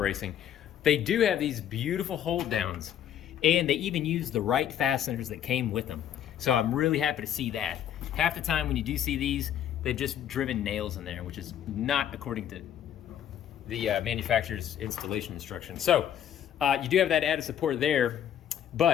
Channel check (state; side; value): quieter; right; 10.1 dB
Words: They do have these beautiful hold downs, and they even use the right fasteners that came with them. So I'm really happy to see that. Half the time when you do see these, they've just driven nails in there, which is not according to the manufacturer's installation instructions. So you do have that added support there,